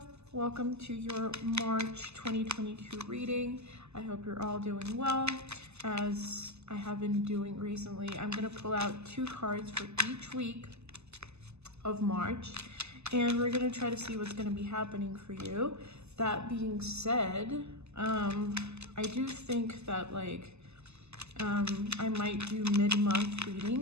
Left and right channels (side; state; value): left; late; 0.80 ms